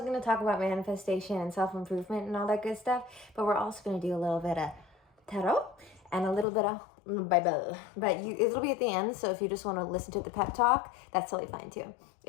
going to talk about manifestation and self-improvement and all that good stuff, but we're also going to do a little bit of tarot and a little bit of Bible. But it'll be at the end, so if you just want to listen to the pep talk, that's totally fine too.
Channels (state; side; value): drops out; right; at 6.5 s